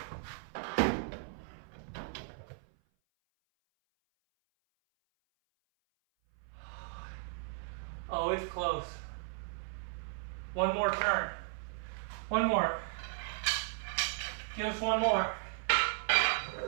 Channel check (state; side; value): silent; left; 54 dB below the other